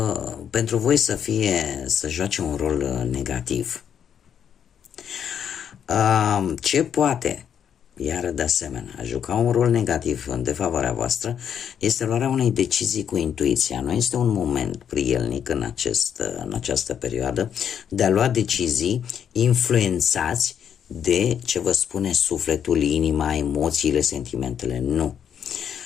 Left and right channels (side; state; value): right; quieter; 8.5 dB